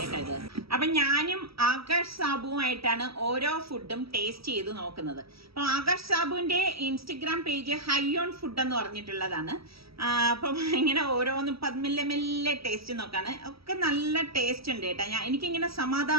കേട്ടോ ഇത്. അപ്പൊ ഞാനും ആകാശ് സാബുവുമായിട്ടാണ് ഓരോ ഫുഡും ടേസ്റ്റ് ചെയ്ത് നോക്കുന്നത്. അപ്പൊ ആകാശ് സാബുവിന്റെ ഇൻസ്റ്റഗ്രാം പേജ് ഹൈയോൺ ഫുഡ് എന്ന് പറഞ്ഞിട്ടുള്ളതാണ്. അപ്പം ഇങ്ങനെ ഓരോന്നും മെല്ലെ ടേസ്റ്റ് നോക്കാണ്. ഒക്കെ നല്ല ടേസ്റ്റ് ഉണ്ട് കേട്ടോ. എനിക്കിങ്ങനെ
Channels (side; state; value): left; late; 0.76 ms